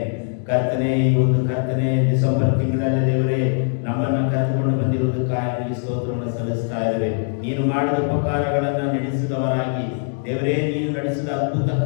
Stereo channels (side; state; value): right; silent; 65 dB below the other